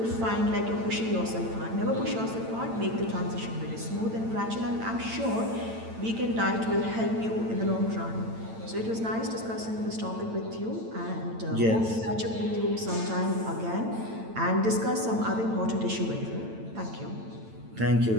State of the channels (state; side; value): late; left; 9.0 ms